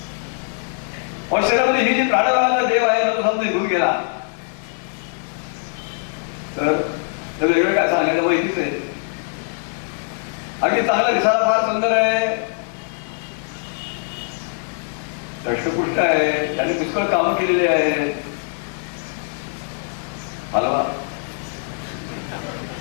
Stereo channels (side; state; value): right; silent; digital silence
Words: और शरीरामध्ये ही जी प्राणवायूचा देव आहे ना तो समजा निघून गेला तर वेगळं काय सांगायचं माहितीच आहे. अगदी चांगला दिसायला फार सुंदर आहे, दष्टपुष्ट आहे, त्याने पुष्कळ कामं केलेली आहेत. हलवा